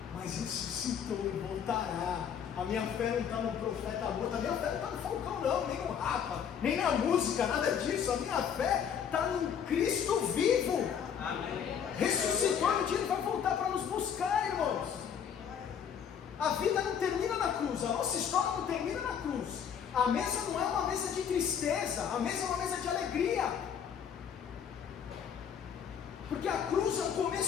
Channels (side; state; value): right; quieter; 7.9 dB